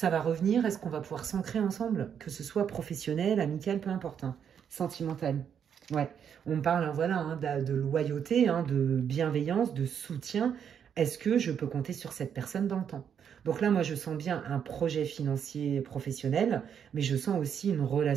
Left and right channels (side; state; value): left; quieter; 8.1 dB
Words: va revenir? Est-ce qu'on va pouvoir s'ancrer ensemble? Que ce soit professionnel, amical, peu importe. Hein. Sentimental. Ouais, on parle voilà, hein, de loyauté, hein, de bienveillance, de soutien. Est-ce que je peux compter sur cette personne dans le temps? Donc là, moi, je sens bien un projet financier professionnel, mais je sens aussi une